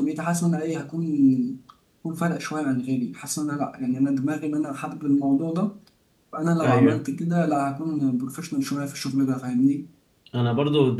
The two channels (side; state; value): both; identical; correlation 1.00